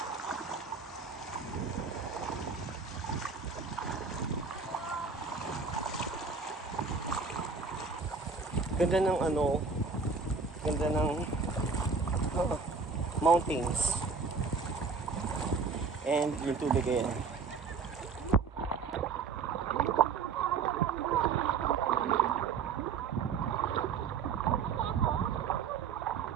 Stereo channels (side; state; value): left; quieter; 5.2 dB